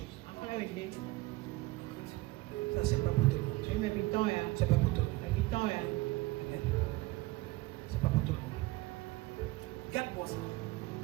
Ça, c'est pas pour tout le monde. C'est pas pour tout le monde. C'est pas pour tout le monde. Regarde-moi ça.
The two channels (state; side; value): quieter; left; 20.3 dB